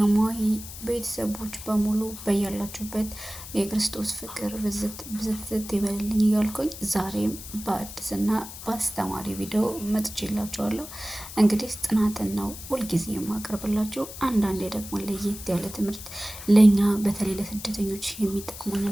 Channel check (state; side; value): noise; left; hiss, 12 dB below the sound